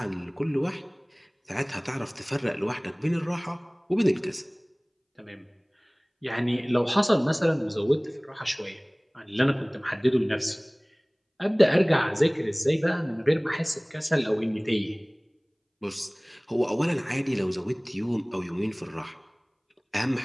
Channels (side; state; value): both; identical; correlation 1.00